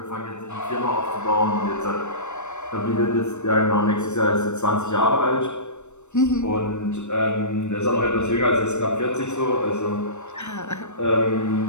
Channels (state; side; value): late; right; 0.83 ms